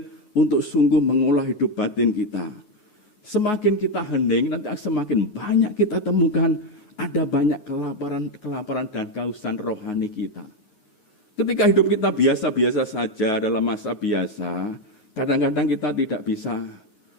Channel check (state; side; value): late; right; 9.4 ms